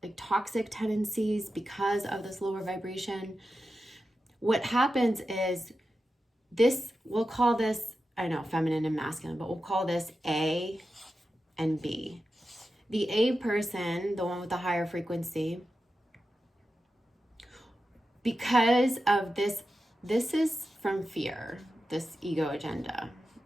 like toxic tendencies because of this lower vibration. What happens is this, we'll call this, I know, feminine and masculine, but we'll call this A and B. The A person, the one with the higher frequency, because of this is from fear, this ego agenda,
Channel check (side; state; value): both; normal; correlation 0.91